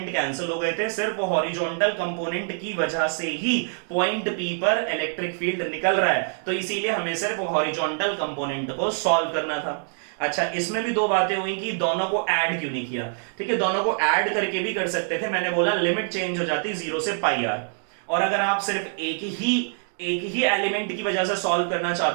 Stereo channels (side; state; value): left; silent; 62 dB below the other